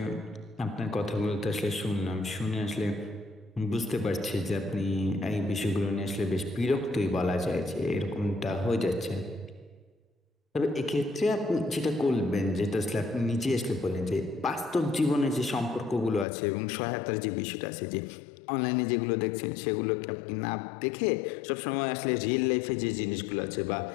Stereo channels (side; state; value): right; drops out; at 16.2 s